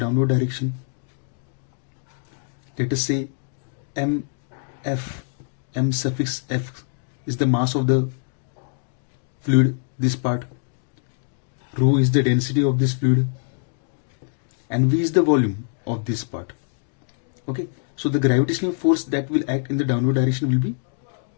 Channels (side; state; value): right; silent; digital silence